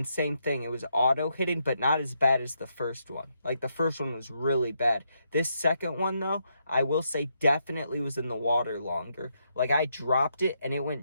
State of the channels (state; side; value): inverted; both; correlation -0.79